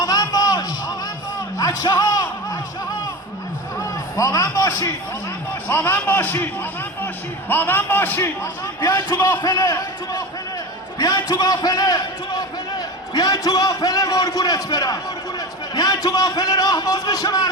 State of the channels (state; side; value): normal; both; correlation 0.28